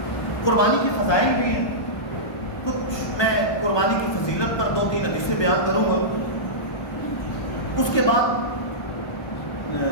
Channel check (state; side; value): late; right; 1.2 ms